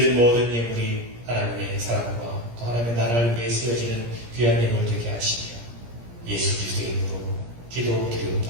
모든 예물이 하나님의 사랑과 또 하나님의 나라를 위해 쓰여지는 귀한 예물 되게 하시며 예수 그리스도의 이름으로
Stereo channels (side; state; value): left; late; 17 ms